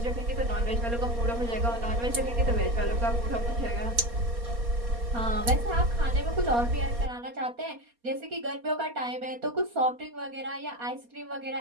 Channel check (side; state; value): left; late; 4.2 ms